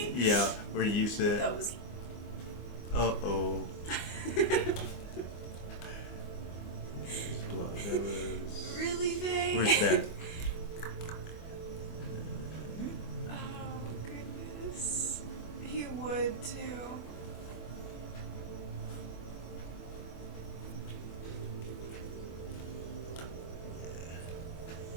Yeah, where you said, That was. uh-oh. That was... Really, Faye? Where's that? Oh, goodness. He would, too.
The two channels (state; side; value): late; right; 24 ms